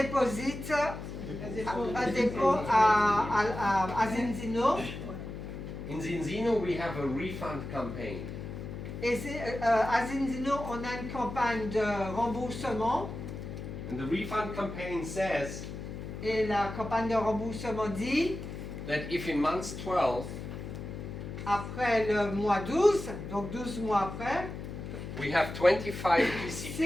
à Zinzino. In Zinzino we have a refund campaign. Et à Zinzino, on a une campagne de remboursement. And the refund campaign says Et la campagne de remboursement dit, that if in month 12 après le mois 12, donc 12 mois après, we have 25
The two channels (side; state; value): left; noise; hum, 8 dB below the sound